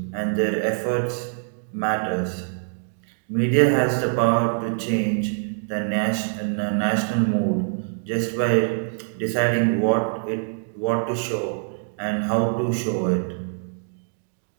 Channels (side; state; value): left; silent; digital silence